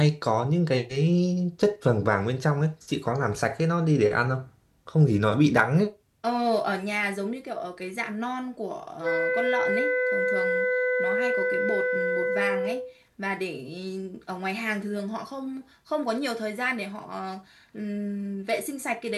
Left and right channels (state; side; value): identical; both; correlation 1.00